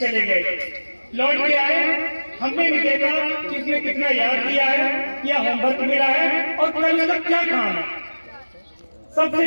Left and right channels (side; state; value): both; inverted; correlation -1.00